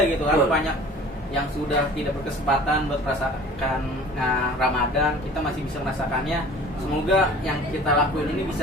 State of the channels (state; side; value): normal; both; correlation 0.44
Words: gitu kan, Betul. banyak yang sudah tidak berkesempatan buat merasakan Ramadan, kita masih bisa merasakannya. Semoga yang kita lakuin ini